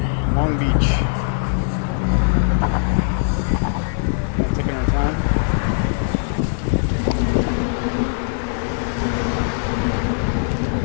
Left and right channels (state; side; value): silent; right; digital silence